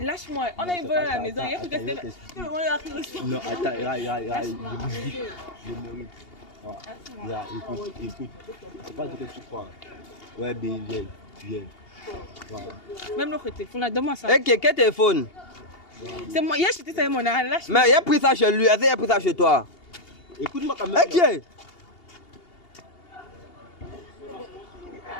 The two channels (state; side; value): late; right; 2.8 ms